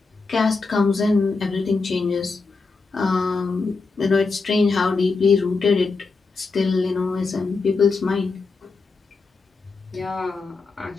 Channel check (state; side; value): quieter; right; 4.2 dB